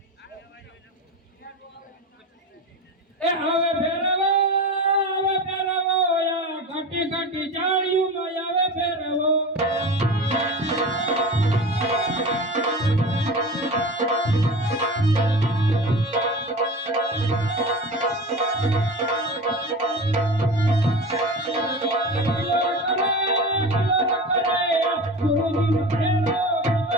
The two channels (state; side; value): normal; both; correlation 0.31